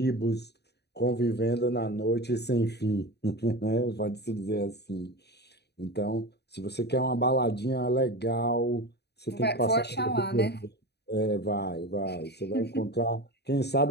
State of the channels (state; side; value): late; right; 0.48 ms